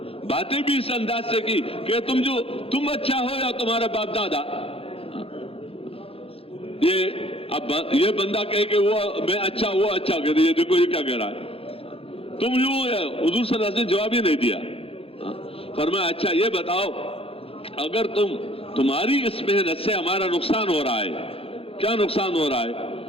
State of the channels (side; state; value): right; late; 0.27 ms